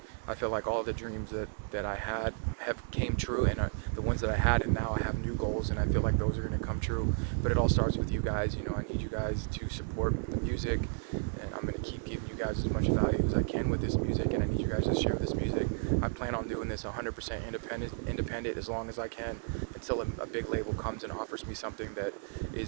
I feel like all the dreams that I had have came true, and the ones that I had, and now I have new goals, and I feel like those are going to come true. But it all starts with you guys. I need you guys to support the music, and I'm going to keep giving you guys as much value as I can with this music, and I need you guys to share this music. I plan on doing this 100% independent as long as I can, until a big label comes and offers me something that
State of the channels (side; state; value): left; silent; digital silence